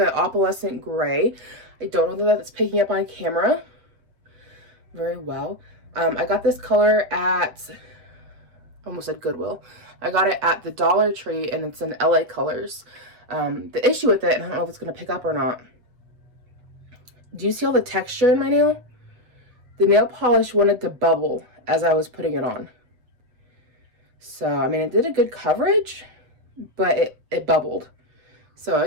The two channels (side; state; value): left; late; 8.0 ms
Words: opalescent gray. I don't know that that's picking up on camera very well. I got this color at, almost said Goodwill. I got it at the Dollar Tree, and it's in LA Colors. The issue with it, and I don't know if it's going to pick up or not. Do you see all the texture in my nail? The nail polish wanted to bubble as I was putting it on. So, I mean, it did a good coverage, but it bubbled. So I